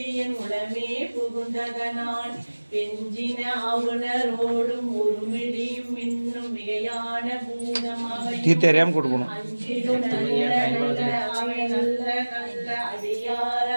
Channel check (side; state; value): both; inverted; correlation -1.00